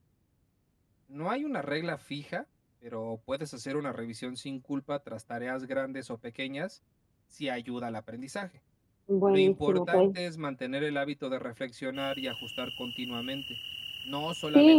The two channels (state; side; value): identical; both; correlation 1.00